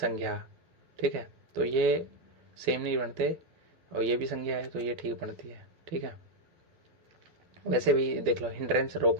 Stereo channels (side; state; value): left; late; 12 ms